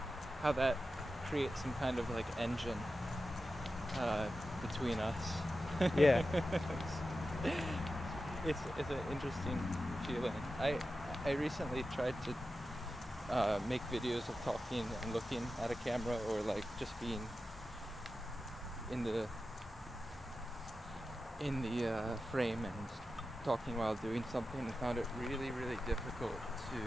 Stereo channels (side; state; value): both; normal; correlation 0.92